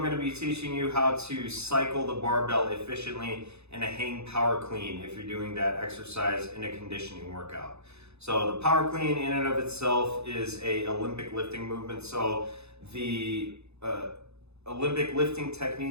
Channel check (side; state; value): left; late; 0.80 ms